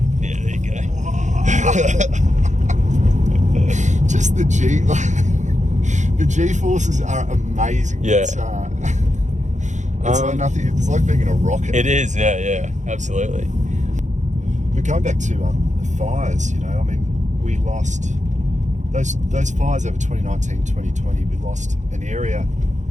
there you go. Just just the the G forces are amazing. Yeah. It's like nothing. It's like being in a rocket. It is, yeah, absolutely. But going back to the fires, I mean, we lost those fires over 2019, 2020. We lost an area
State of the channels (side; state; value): left; late; 0.35 ms